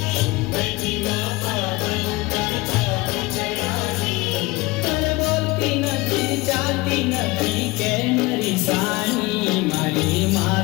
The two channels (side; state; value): right; quieter; 22.2 dB